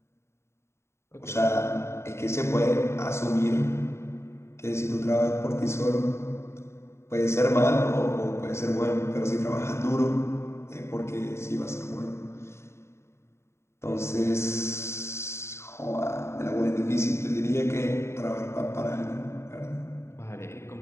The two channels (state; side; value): late; right; 0.13 ms